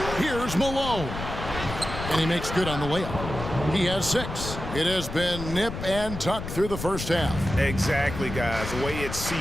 Here's Malone. And he makes good on the layup. He has 6. It has been nip and tuck through the first half. Exactly, guys. The way it's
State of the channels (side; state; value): left; noise; rumble, 7 dB below the sound